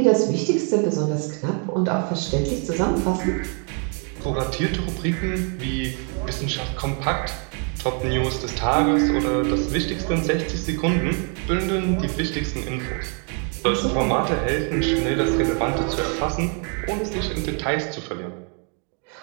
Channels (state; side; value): quieter; left; 39.6 dB